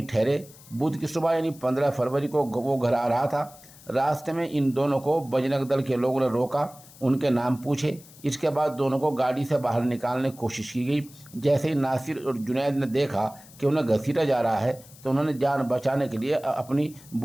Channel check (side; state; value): left; noise; hiss, 22 dB below the sound